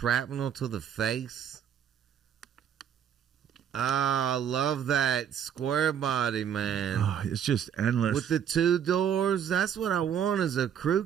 to the face. I love that square body, man. Oh, it's just endless. With the 2 doors, that's what I want is a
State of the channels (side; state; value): left; quieter; 8.8 dB